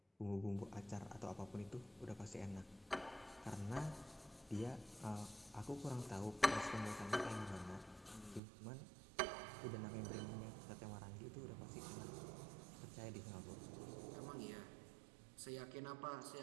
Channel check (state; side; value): drops out; left; at 8.4 s